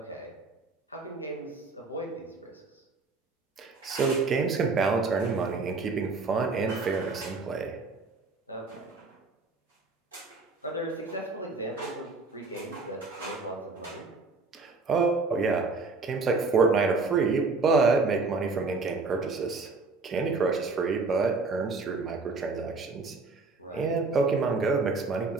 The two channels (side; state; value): left; quieter; 3.9 dB